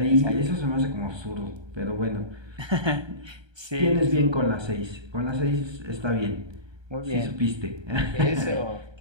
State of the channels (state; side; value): late; left; 1.3 ms